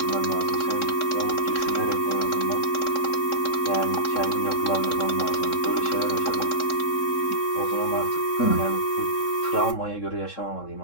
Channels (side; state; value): right; late; 3.7 ms